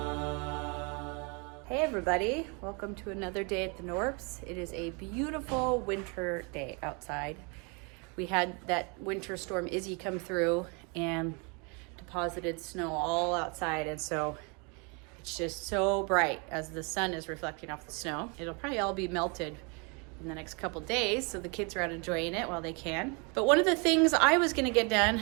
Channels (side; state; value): left; quieter; 32.9 dB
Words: Hey everybody, welcome to another day at the Knorps. It is a beautiful winter day outside. We had that winter storm Izzy come through and deposited snow all outside, and so it's just so bright as the sun is reflecting off the snow. It'll probably all be melted in the next couple days, so the kids are out enjoying it while they can. But one of the things I was gonna get done